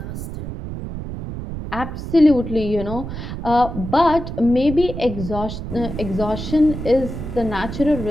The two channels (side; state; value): right; noise; rumble, 7 dB below the sound